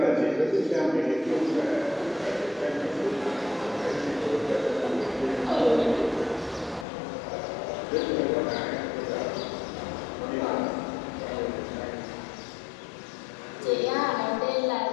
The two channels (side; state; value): right; drops out; at 6.9 s